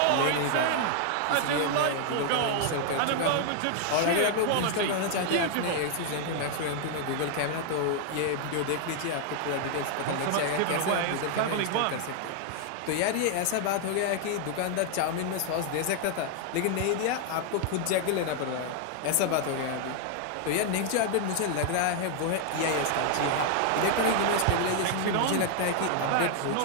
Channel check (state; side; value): different; both; correlation 0.00